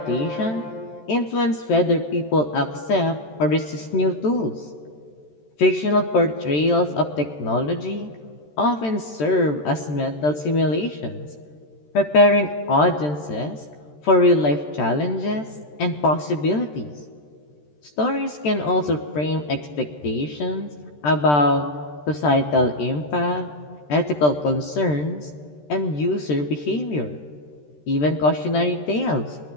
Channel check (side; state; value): right; late; 13 ms